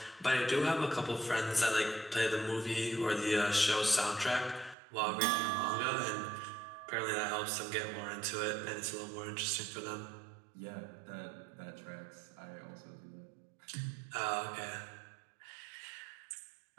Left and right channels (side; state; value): left; drops out; at 4.8 s